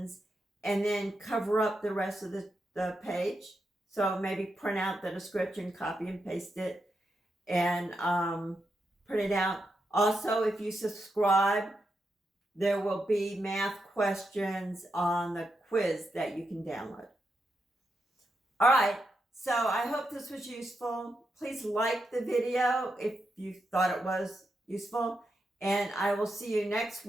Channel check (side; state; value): both; normal; correlation 0.85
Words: and then cover up the rest of the page. So maybe print out the description, copy and paste it, and print it out. Also, if you subscribe, there will be math questions on the quiz that you can download. All right, so I hope this was useful. Please like the video if you thought it was useful. And I will see you next